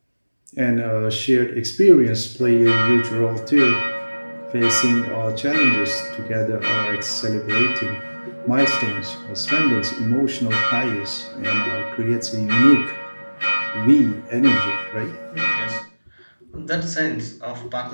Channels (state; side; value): inverted; both; correlation -1.00